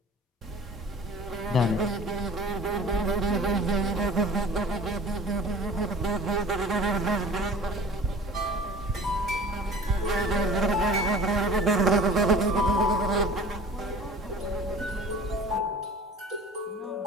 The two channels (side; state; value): both; normal; correlation 0.44